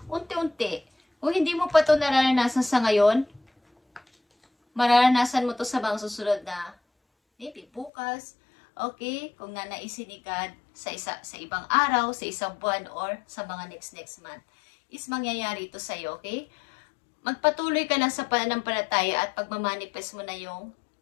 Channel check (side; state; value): right; drops out; at 7.9 s